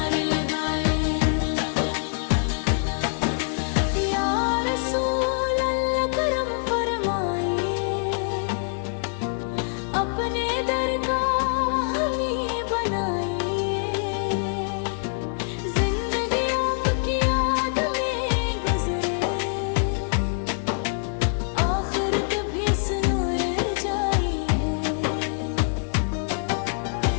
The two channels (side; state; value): right; silent; digital silence